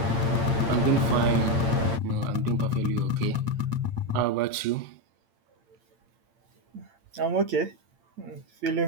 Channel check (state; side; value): late; left; 8.8 ms